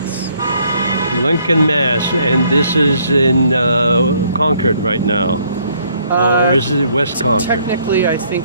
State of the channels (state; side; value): inverted; both; correlation -0.66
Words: Lincoln, Mass, and this is in Concord right now, or is it West Concord? Technically, I think